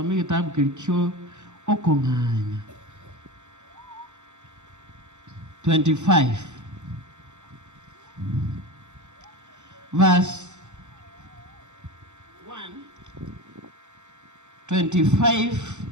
kitabu kilicho okonganya 25 verse 1 25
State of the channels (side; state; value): left; late; 0.84 ms